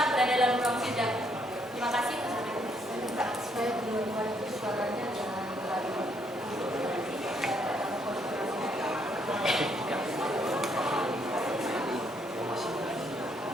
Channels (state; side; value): normal; both; correlation 0.71